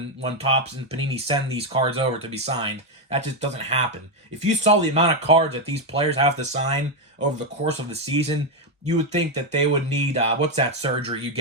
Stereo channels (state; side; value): normal; both; correlation 0.05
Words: Topps and Panini send these cards over to be signed. That just doesn't happen. If you saw the amount of cards that these players have to sign over the course of the season, you would think that they would need what's that surgery you